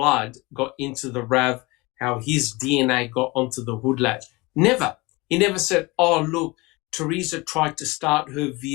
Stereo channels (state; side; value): quieter; right; 23.8 dB